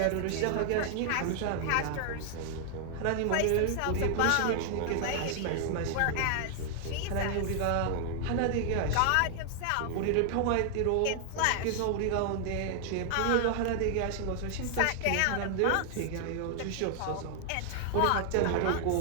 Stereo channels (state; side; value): different; both; correlation 0.00